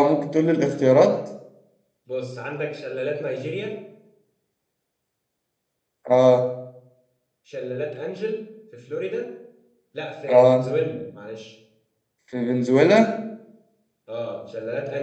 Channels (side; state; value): both; identical; correlation 1.00